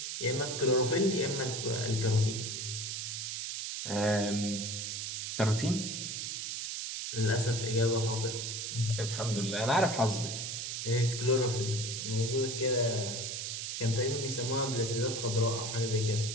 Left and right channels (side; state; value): right; noise; hiss, 4 dB below the sound